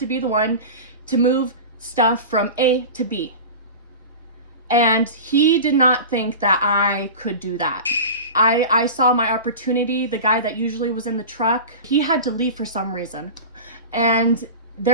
to be the one to move stuff from A to B. And he did not think that I could do that. I saw my opportunity. The guy that usually was in the truck, he had to leave for some reason. And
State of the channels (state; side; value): inverted; both; correlation -0.31